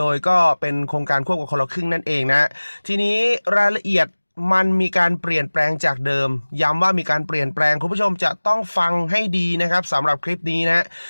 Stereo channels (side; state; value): both; inverted; correlation -1.00